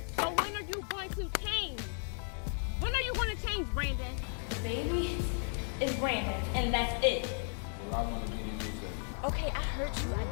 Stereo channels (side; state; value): right; silent; 55 dB below the other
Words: So when are you going to change? When are you going to change, Brandon? Baby is Brandon, and that's it. Well, I want to be the new Okay, I heard you.